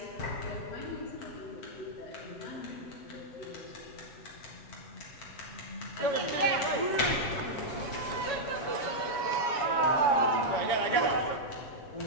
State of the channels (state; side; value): late; right; 7.2 ms